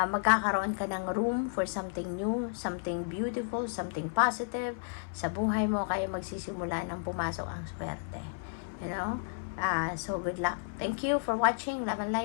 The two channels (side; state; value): right; silent; 56 dB below the other